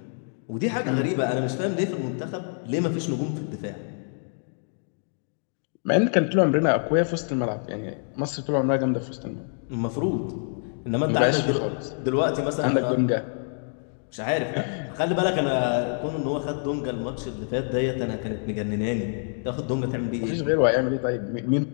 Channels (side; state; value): right; silent; 61 dB below the other